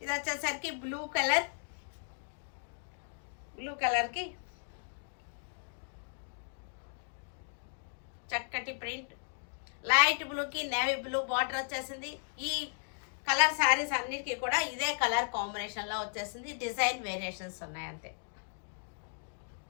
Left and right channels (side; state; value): right; silent; digital silence